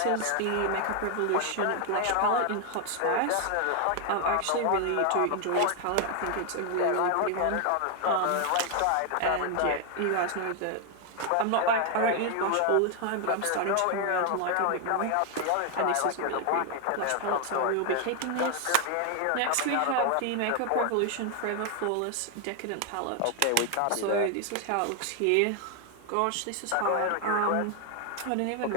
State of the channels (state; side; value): different; both; correlation 0.00